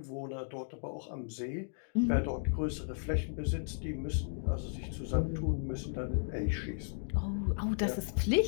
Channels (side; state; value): right; silent; digital silence